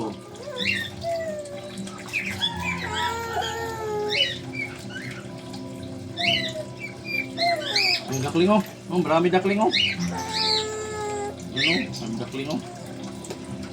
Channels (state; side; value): identical; both; correlation 1.00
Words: Ang dakling oh. Oh, marami dakling oh. Ano? Ang dakling oh.